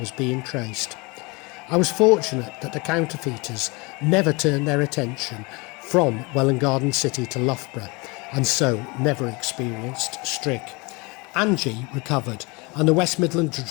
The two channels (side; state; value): right; quieter; 27.1 dB